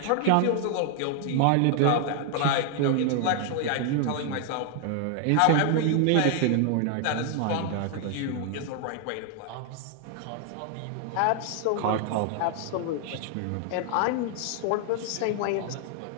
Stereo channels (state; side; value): different; both; correlation 0.00